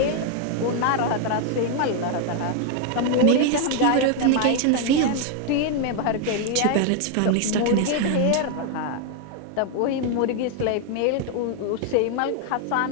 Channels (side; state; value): both; different; correlation 0.00